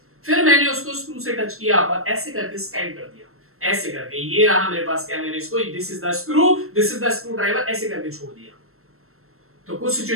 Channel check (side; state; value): left; late; 0.62 ms